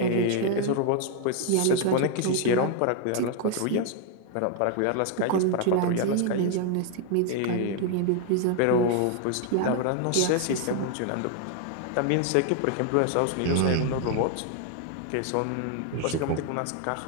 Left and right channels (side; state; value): both; different; correlation 0.00